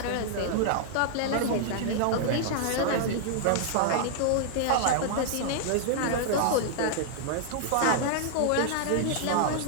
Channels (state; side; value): different; both; correlation -0.01